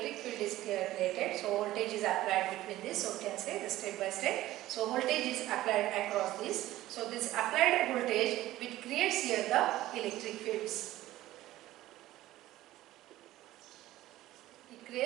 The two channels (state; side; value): quieter; left; 15.5 dB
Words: field is created. So voltage is applied between this. So we can say the step by step. So voltage is applied across this. So this applied voltage, which creates here the electric fields.